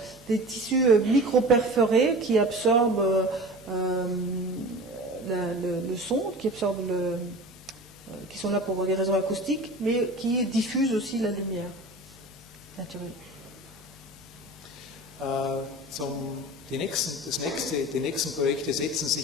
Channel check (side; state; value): both; normal; correlation 0.36